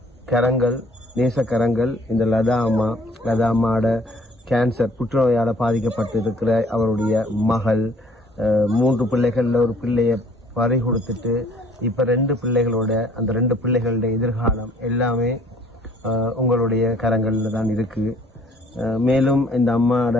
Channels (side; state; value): both; normal; correlation 0.58